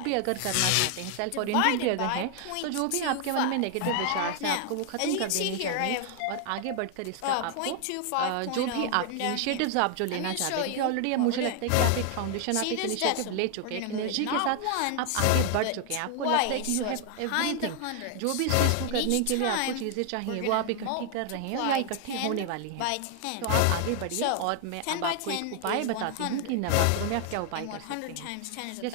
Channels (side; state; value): both; different; correlation 0.00